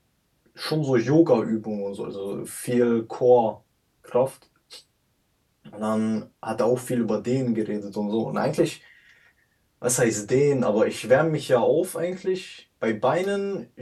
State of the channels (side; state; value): both; identical; correlation 1.00